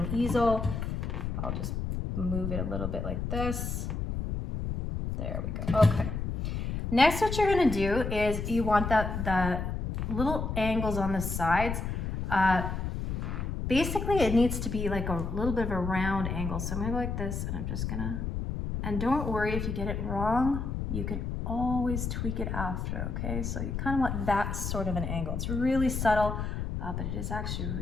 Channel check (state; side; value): noise; left; rumble, 3 dB below the sound